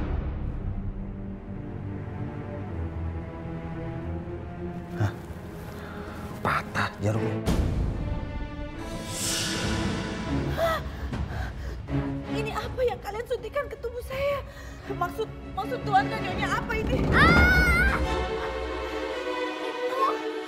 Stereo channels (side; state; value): both; identical; correlation 1.00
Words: Hah? Patah jarumnya. Ini apa yang kalian suntikan ke tubuh saya? Maksud Tuhan dan Nyonya apa ini?